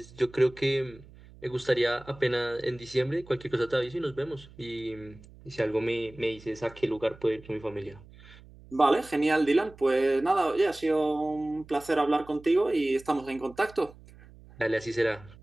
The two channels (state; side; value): noise; right; hum, 22 dB below the sound